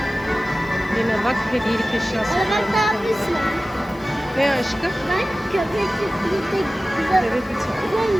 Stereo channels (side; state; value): left; noise; hiss, 28 dB below the sound